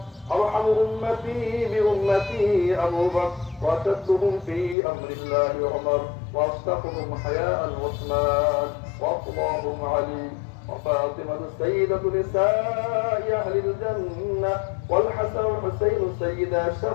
أرحم أمتي بأمتي أبو بكر، وأشدهم في أمر الله عمر، وأصدقهم حياء عثمان، وأفضلهم علي، وفاطمة سيدة نساء أهل الجنة، والحسن والحسين سيدا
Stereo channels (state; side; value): drops out; right; at 4.8 s